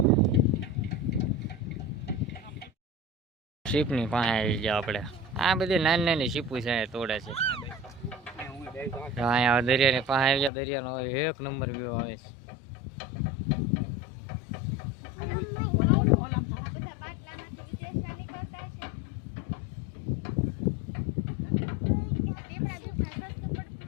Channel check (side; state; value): right; drops out; at 10.5 s